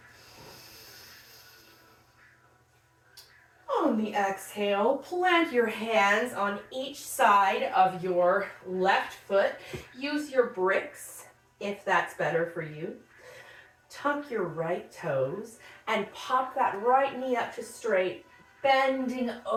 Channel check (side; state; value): both; identical; correlation 1.00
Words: On the exhale, plant your hands on each side of your left foot. Use your bricks if that's better for you. Tuck your right toes and pop that right knee up to straight, bending